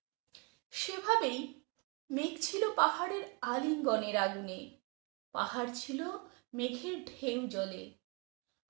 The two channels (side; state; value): left; quieter; 31.2 dB